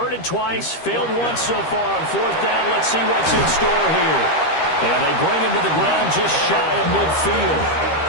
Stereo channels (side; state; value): right; late; 13 ms